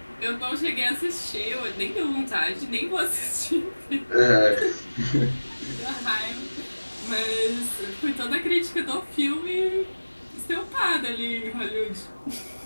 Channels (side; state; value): both; inverted; correlation -1.00